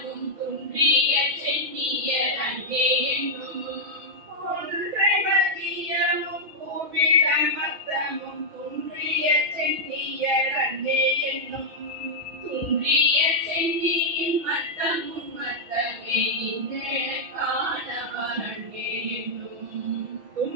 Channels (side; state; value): left; late; 6.2 ms